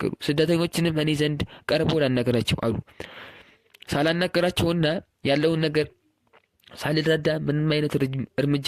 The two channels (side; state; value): both; identical; correlation 1.00